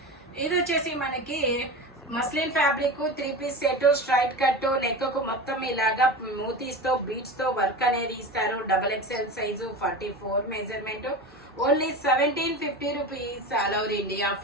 ఇది వచ్చేసి మనకి muslin fabric 3 piece set, straight cut, neck కు మొత్తం ఇలాగా మూతీస్ తో బీట్స్ తో వర్క్ అనేది ఇస్తారు. XXL size 44 measurement. Only 1750 rupees. All over India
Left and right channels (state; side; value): normal; both; correlation 0.28